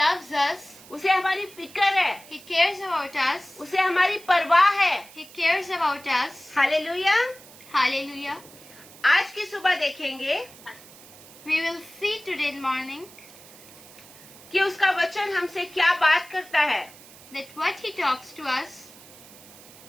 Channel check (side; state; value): right; noise; hiss, 20 dB below the sound